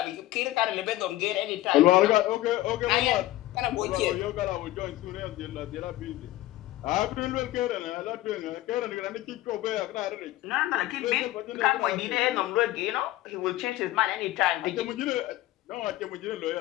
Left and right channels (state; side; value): quieter; right; 16.3 dB